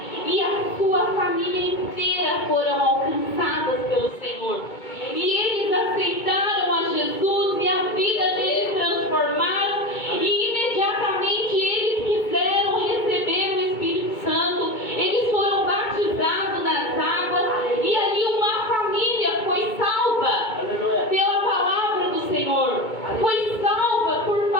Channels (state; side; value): late; right; 2.2 ms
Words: E a sua família inteira foram alcançadas pelo Senhor. E eles aceitaram a Jesus e a vida deles transformaram. E imediatamente eles quiseram receber o Espírito Santo. Eles foram batizados nas águas. E ali uma família foi salva pela palavra do Senhor. Foi salva por